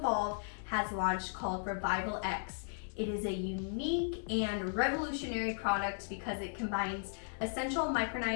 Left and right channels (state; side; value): silent; right; 54 dB below the other